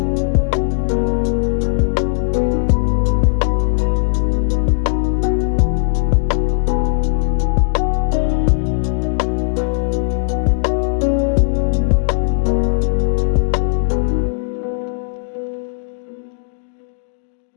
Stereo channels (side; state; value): right; silent; 68 dB below the other